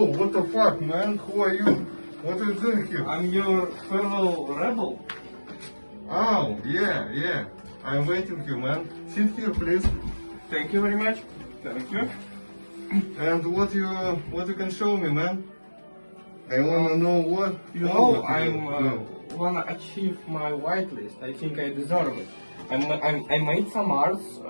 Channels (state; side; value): inverted; both; correlation -1.00